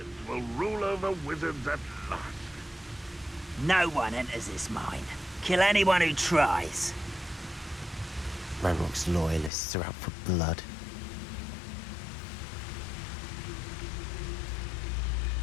will rule over wizards at last. No one enters this mine. Kill anyone who tries. Ranrock's loyalists are out for blood.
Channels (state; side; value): drops out; right; at 9.5 s